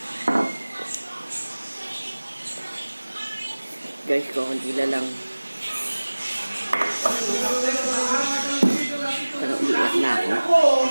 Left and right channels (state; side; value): inverted; both; correlation -1.00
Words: Guys, kukunti na lang. Pero umiiyak na ako.